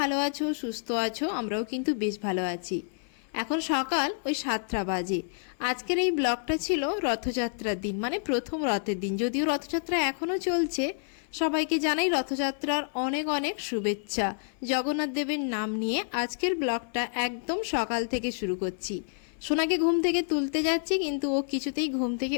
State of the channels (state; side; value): silent; right; 59 dB below the other